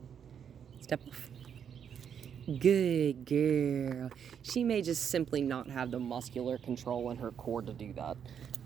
Step off. Good girl. She may just simply not have the muscular control in her core to do that.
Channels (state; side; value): quieter; left; 8.0 dB